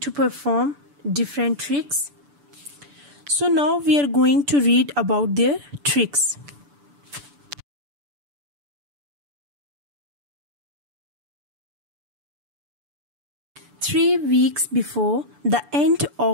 perform different tricks. So now we are going to read about their tricks. Three weeks before the end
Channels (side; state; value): left; late; 6.9 ms